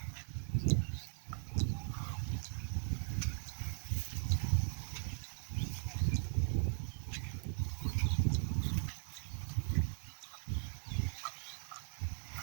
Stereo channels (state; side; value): silent; left; 52 dB below the other